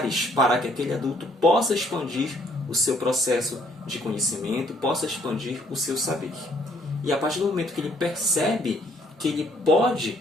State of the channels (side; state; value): both; normal; correlation 0.65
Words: para que aquele adulto possa expandir o seu processo de conhecimento, possa expandir o seu saber. E a partir do momento que ele percebe que ele